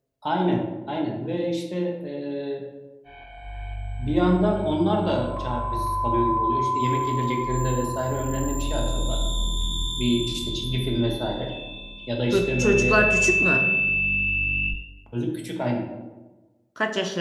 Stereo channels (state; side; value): identical; both; correlation 1.00